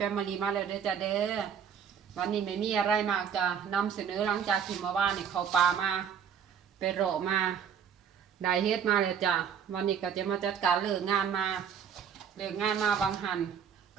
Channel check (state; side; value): quieter; left; 7.7 dB